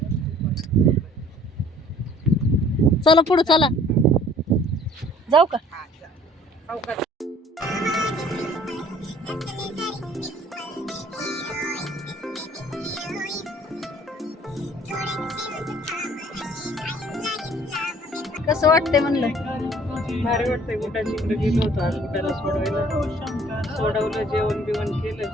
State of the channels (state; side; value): normal; both; correlation 0.55